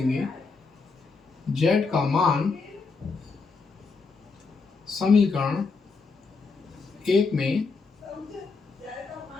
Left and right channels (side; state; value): right; quieter; 4.5 dB